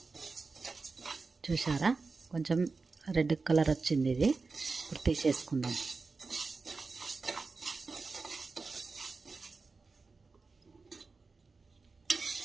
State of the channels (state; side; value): quieter; left; 4.2 dB